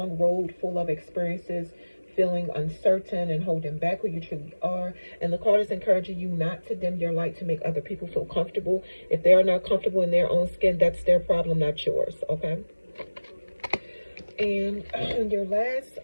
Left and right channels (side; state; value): both; inverted; correlation -1.00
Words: road full of experiences, feeling uncertain and holding back who you truly are. And the card is encouraging you not to dim your light to make other people feel comfortable. If they are not comfortable in their own skin, that's their problem, not yours, okay? And your last